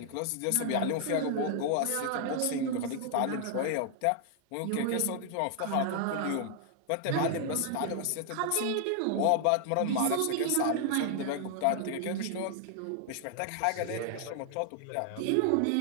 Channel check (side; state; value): both; different; correlation 0.00